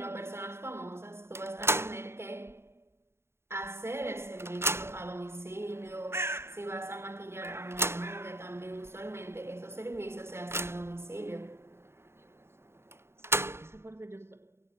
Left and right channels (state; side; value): late; left; 0.12 ms